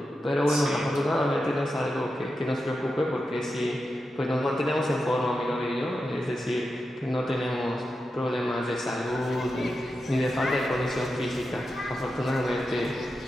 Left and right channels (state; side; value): normal; both; correlation 0.89